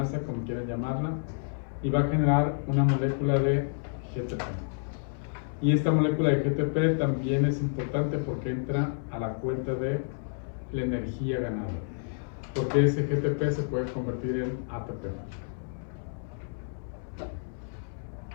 como quieran llamarla, y va a generar una molécula de GTP. Y esta molécula de GTP también es importante porque entra a la cuenta de la energía ganada, porque ese GTP se puede convertir en ATP.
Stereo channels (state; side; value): silent; right; 58 dB below the other